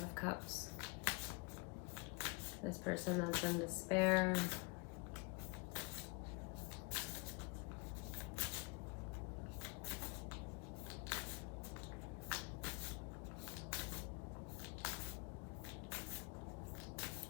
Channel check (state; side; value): quieter; right; 28.5 dB